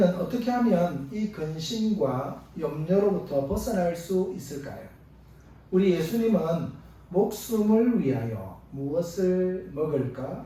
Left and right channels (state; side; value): identical; both; correlation 1.00